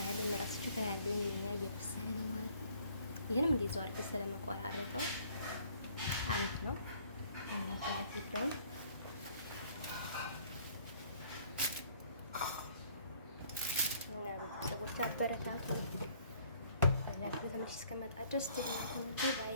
ምራስችሁ ያለው የኛ እየበሰለ ነው ማለት ነው። ይሄንም እንደዛው አድርገን ስለመቆራረጠው አንድ ነው ማለት ነው። እና ቤተሰቦች አበረታቱኝ። ላይክ በተመች እስከመጣ ድረስ ባይ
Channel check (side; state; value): both; inverted; correlation -0.60